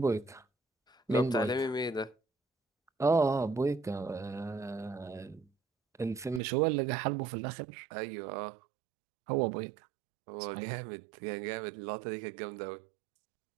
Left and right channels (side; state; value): left; drops out; at 6.4 s